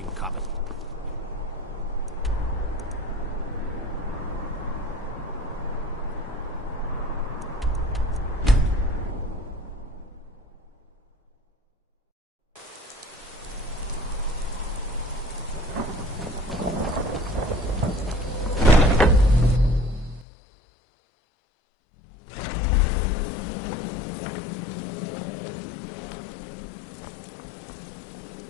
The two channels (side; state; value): right; drops out; at 20.2 s